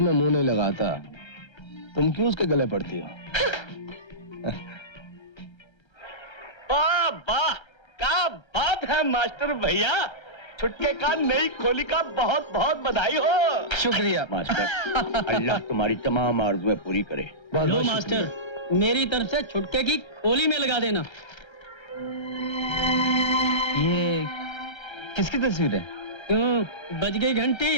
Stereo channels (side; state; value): right; late; 1.3 ms